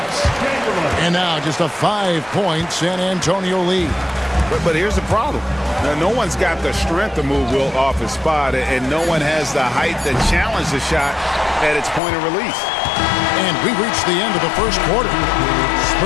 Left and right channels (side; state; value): right; drops out; at 12.0 s